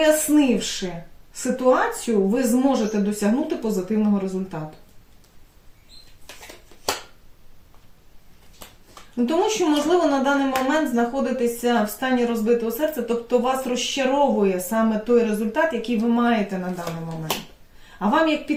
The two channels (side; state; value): both; identical; correlation 1.00